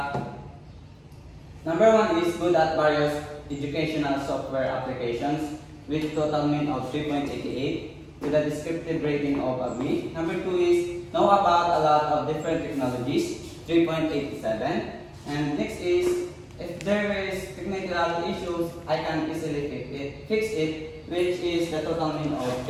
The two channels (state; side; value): identical; both; correlation 1.00